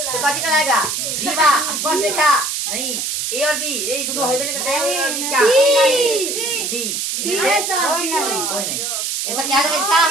तो कौन निकल आएगा? जीवा। स्पर्श रेखा नहीं, ए और बी ये दोनों होबे नहीं करते हैं। क्या? डी। डी है सर। कोई नहीं। ऐसा क्या है इसका?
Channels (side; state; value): right; noise; hiss, 2 dB below the sound